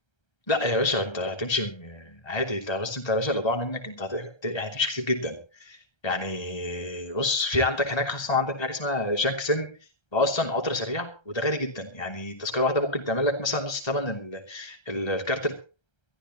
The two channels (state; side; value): late; right; 1.3 ms